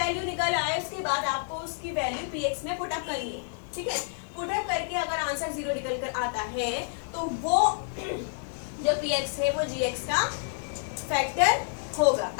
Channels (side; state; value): right; silent; 59 dB below the other